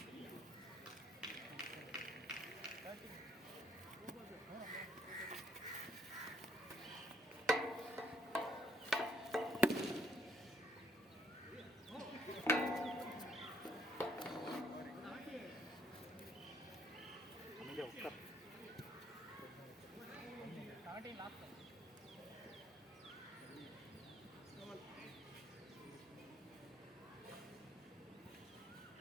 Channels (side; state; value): both; normal; correlation 0.67